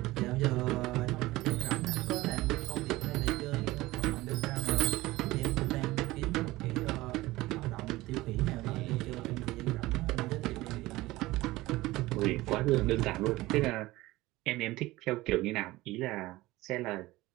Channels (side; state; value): left; quieter; 18.7 dB